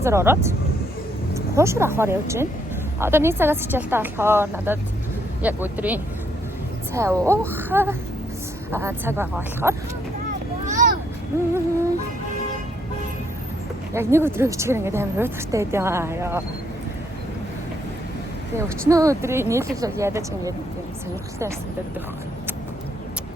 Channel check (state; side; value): normal; both; correlation 0.72